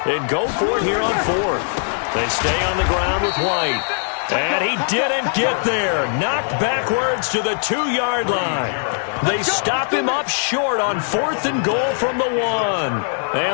and go for it here on 4th. They stay on the ground with White. And he didn't get there. Knocked backwards to the 2-yard line. They stop him up short on 4th and goal from the 1.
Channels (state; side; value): silent; right; digital silence